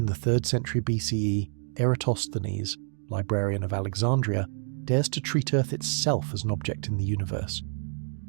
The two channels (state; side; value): silent; left; 59 dB below the other